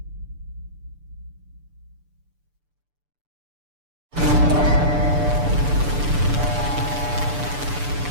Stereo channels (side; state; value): left; late; 6.8 ms